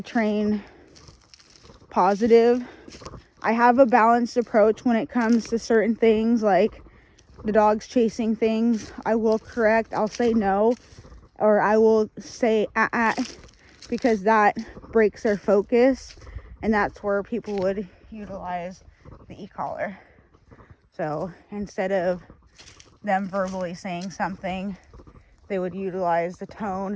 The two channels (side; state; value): both; identical; correlation 1.00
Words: train positive. I have a balanced approach when it comes to certain things, like the dog's chasing things. I will correct, I'll say no, or I will say because that breaks their focus, and that's where people would utilize the e-collar. So instead of them verbally saying something, they would utilize the